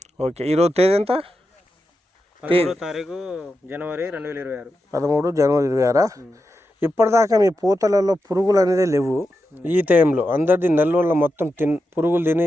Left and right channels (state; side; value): normal; both; correlation 0.88